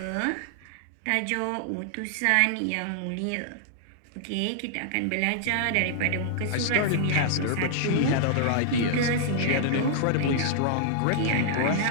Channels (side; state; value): both; different; correlation -0.01